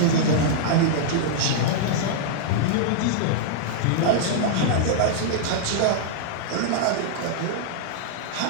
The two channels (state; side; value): different; both; correlation -0.01